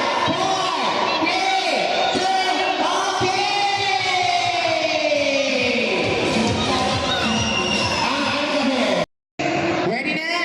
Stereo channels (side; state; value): both; identical; correlation 1.00